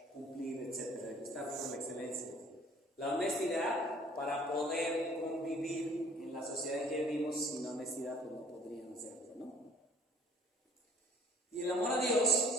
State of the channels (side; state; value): both; normal; correlation 0.54